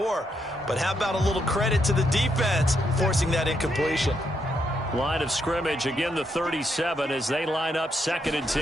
But how about a little credit to the defense forcing that incompletion? Line of scrimmage, again the 37 as they line up 2nd and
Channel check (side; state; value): both; normal; correlation 0.78